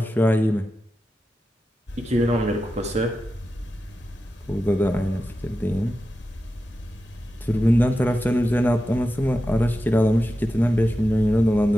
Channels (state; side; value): normal; both; correlation 0.91